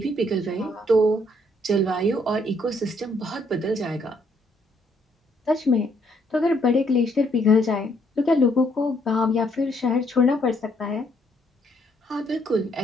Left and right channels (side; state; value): both; normal; correlation 0.70